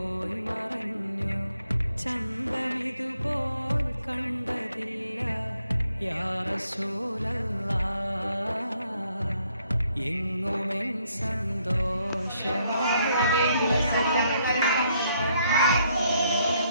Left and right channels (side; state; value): both; inverted; correlation -0.71